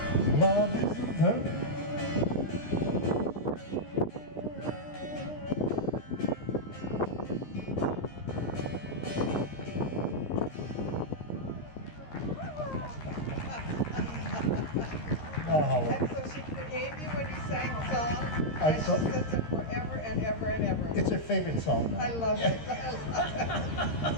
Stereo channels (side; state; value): right; late; 13 ms